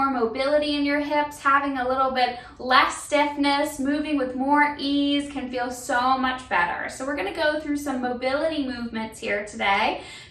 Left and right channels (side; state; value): both; identical; correlation 1.00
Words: mobility in your hips, having a little bit less stiffness, moving with more ease can feel so much better. So we're going to go through some mobility movements here today